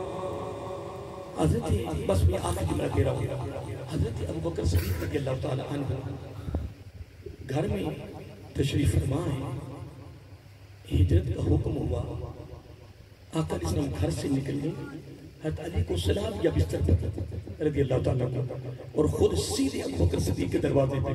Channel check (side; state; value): both; identical; correlation 1.00